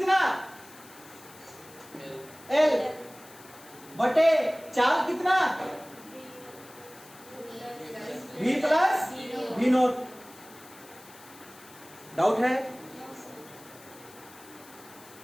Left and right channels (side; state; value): left; noise; hiss, 21 dB below the sound